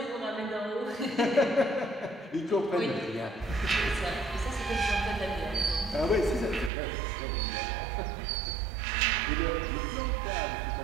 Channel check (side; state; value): left; drops out; at 6.7 s